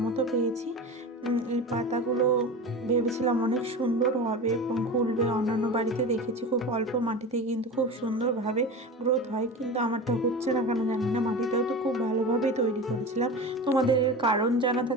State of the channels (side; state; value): both; normal; correlation 0.30